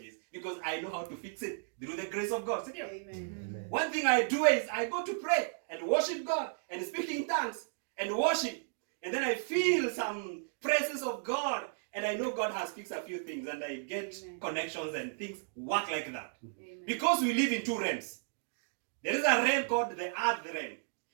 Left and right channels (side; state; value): left; silent; digital silence